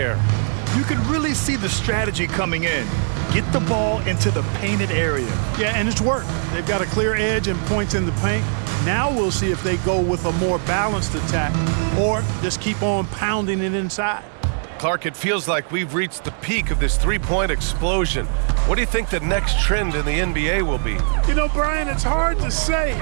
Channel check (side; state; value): left; silent; digital silence